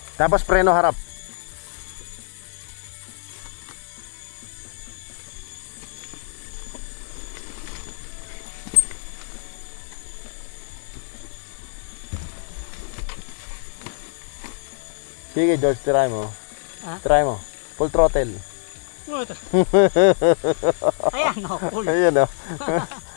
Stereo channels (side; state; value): right; silent; digital silence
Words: Tapos preno harap. Sige George, try mo. Ha? Try mo. Full throttle. Ayan, no, cool. Ayun o.